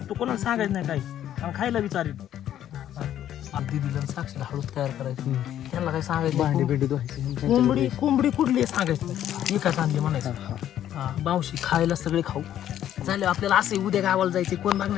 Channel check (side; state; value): right; quieter; 11.2 dB